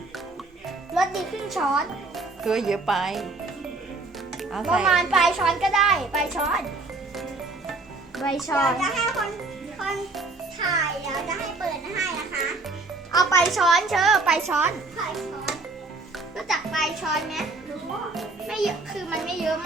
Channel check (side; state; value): left; quieter; 3.3 dB